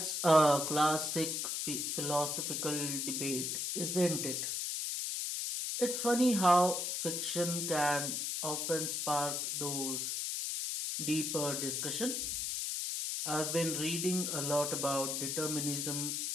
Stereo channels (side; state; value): left; noise; hiss, 1 dB below the sound